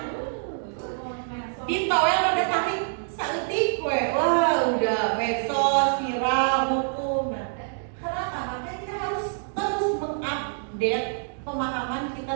ditowel udah tarik saeutik we, wah udah medsos, viral, hukum. Nah, kenapa? Makanya kita harus terus mengupdate pemahaman kita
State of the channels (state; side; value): silent; left; digital silence